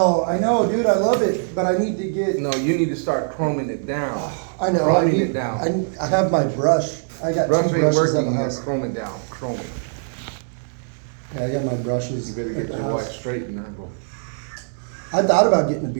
I know, dude. I love it, but I need to get... No, you need to start chroming it down. I know. Chroming it down. I have my brush. I got Brush two ain't brushes at working, the you house. chrome it down. Chrome it. Yeah, I got my brushes. You better at get the your wife house. straightener. I thought about getting a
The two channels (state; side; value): silent; left; digital silence